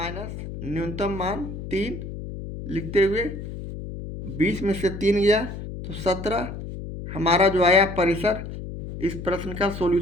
न्यूनतम मान 3 लिखते हुए 20 में से 3 गया तो 17 हमारा जो आया परिसर इस प्रश्न का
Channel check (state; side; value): noise; left; hum, 9 dB below the sound